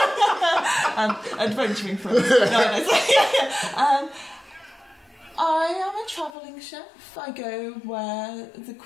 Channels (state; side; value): drops out; right; at 6.3 s